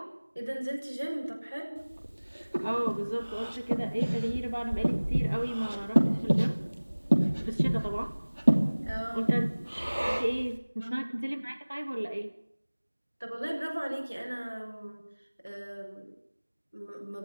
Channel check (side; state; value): both; inverted; correlation -1.00